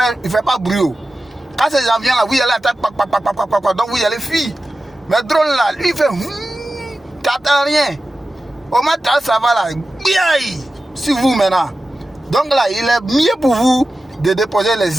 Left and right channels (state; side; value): normal; both; correlation 0.94